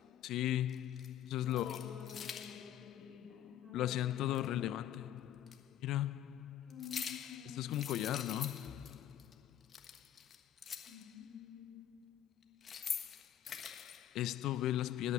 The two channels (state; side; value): quieter; right; 11.5 dB